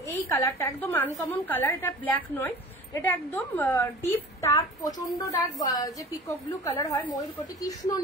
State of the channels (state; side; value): normal; both; correlation 0.40